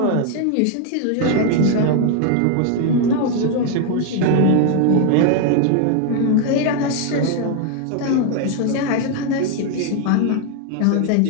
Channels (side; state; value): both; different; correlation 0.00